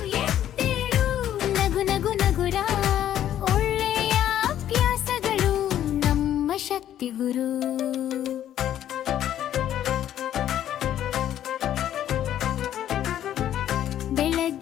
ಎದ್ದೇಳು ನಗು ನಗು ನಗುರ ಒಳ್ಳೆಯ ಅಭ್ಯಾಸಗಳು ನಮ್ಮ ಶಕ್ತಿ ಗುರು.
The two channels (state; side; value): quieter; right; 11.3 dB